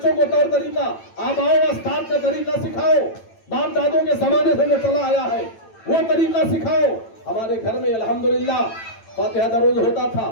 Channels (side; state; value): right; late; 9.0 ms